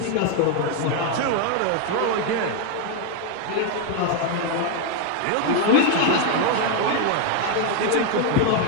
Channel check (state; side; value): different; both; correlation 0.01